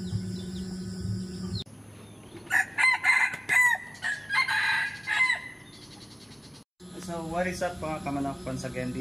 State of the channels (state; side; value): identical; both; correlation 1.00